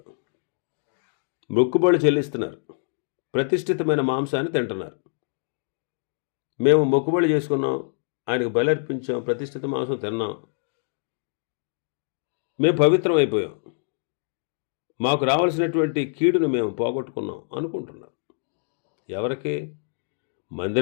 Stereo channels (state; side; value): silent; right; digital silence